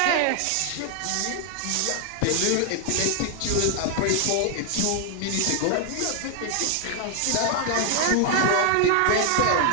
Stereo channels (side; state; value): both; different; correlation 0.00